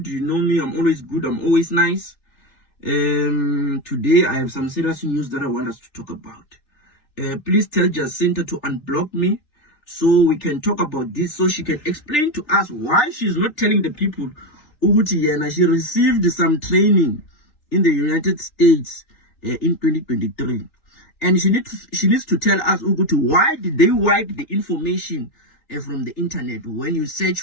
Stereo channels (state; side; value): late; right; 3.4 ms